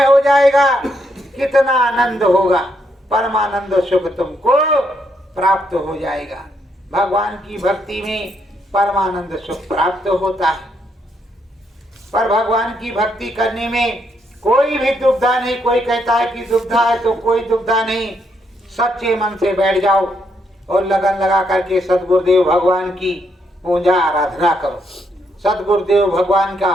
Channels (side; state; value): both; normal; correlation 0.76